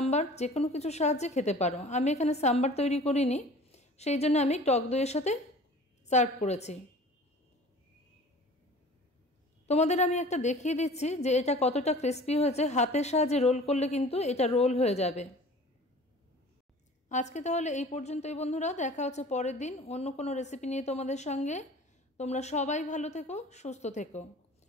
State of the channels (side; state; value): both; normal; correlation 0.44